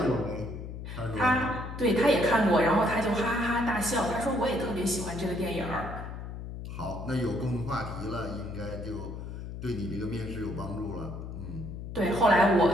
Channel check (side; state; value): left; noise; hum, 8 dB below the sound